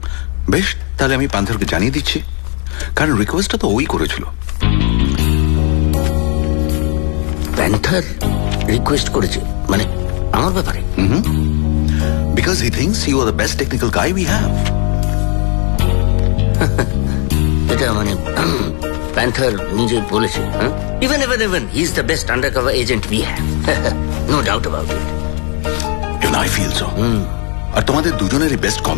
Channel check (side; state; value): right; quieter; 37.5 dB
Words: বেশ, তাহলে আমি প্যান্থারকে জানিয়ে দিচ্ছি, কারণ রিকোয়েস্টটা তো ওই করেছিল। প্যান্থার রিকোয়েস্ট করেছে মানে আমার ব্যাপারে? Because he thinks you are the best technical guy we have. এটা মানে প্যান্থার নিজে বলেছে, even he is the best undercover agent we have, no doubt about it. Even I feel so. আর তোমাদের দুজনের বেস্ট